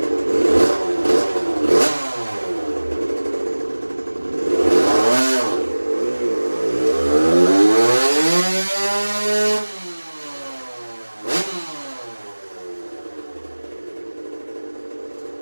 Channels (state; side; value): inverted; both; correlation -1.00